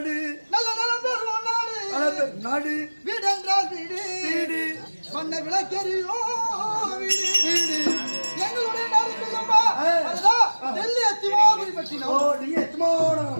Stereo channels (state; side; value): inverted; both; correlation -1.00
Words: நல்ல நலம் பெறுவோம் நாடு நாடு வீடு என்றால் வீடு வீடு மண்ண விளக்கெறியோ வீடு வீடு எங்களுடைய நாடு இருக்கிறதுப்பா அதுதான் டெல்லி அத்திமாபுரி ஓ பட்டினம் நீ எத்தமோட